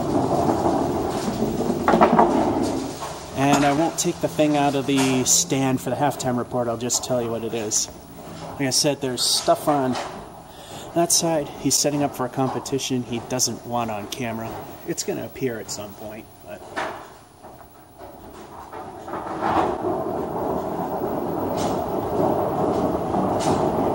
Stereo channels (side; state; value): both; identical; correlation 1.00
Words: And I won't take the thing out of the stand for the halftime report. I'll just tell you what it is. Like I said, there's stuff on that side. He's setting up for a competition he doesn't want on camera. It's going to appear at some point, but...